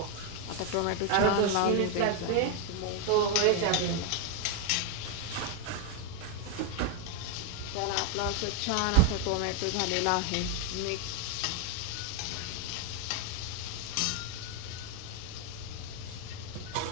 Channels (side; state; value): both; different; correlation 0.01